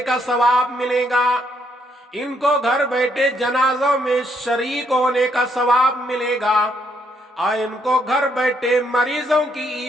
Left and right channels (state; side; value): normal; both; correlation 0.72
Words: کا ثواب ملے گا، ان کو گھر بیٹھے جنازوں میں شریک ہونے کا ثواب ملے گا، اور ان کو گھر بیٹھے مریضوں کی